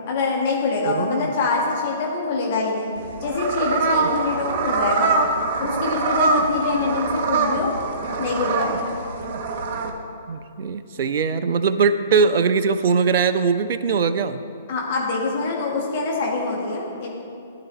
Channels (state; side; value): inverted; both; correlation -0.41